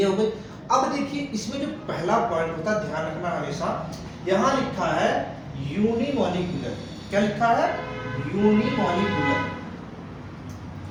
हो गई। अब देखिए इसमें जो पहला पॉइंट होता है, ध्यान रखना हमेशा, यहां लिखा है यूनिमॉलिक्यूलर। क्या लिखा है? यूनिमॉलिक्यूलर।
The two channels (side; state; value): both; identical; correlation 1.00